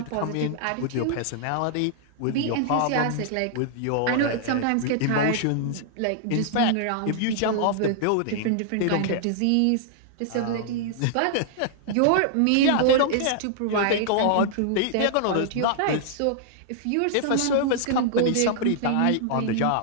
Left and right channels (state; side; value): different; both; correlation -0.01